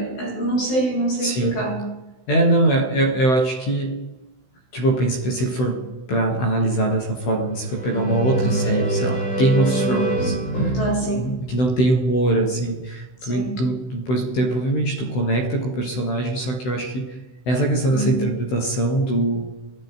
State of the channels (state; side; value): late; right; 16 ms